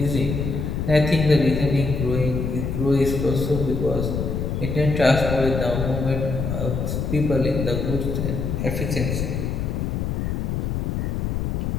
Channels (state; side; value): noise; left; rumble, 2 dB below the sound